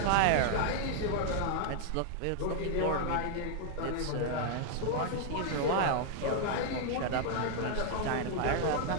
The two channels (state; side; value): different; both; correlation 0.00